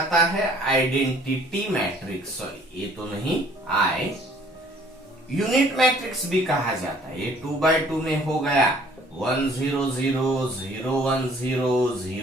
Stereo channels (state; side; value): normal; both; correlation 0.57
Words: है आइडेंटिटी मैट्रिक्स, सॉरी ये तो नहीं, आई यूनिट मैट्रिक्स भी कहा जाता है। ये 2x2 में हो गया 1 0 0 0 1 0